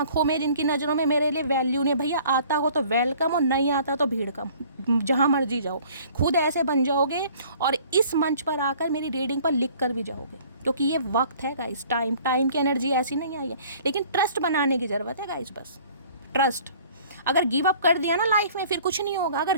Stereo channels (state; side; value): inverted; both; correlation -0.53